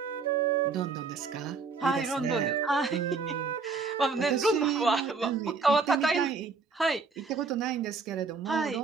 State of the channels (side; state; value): left; quieter; 4.6 dB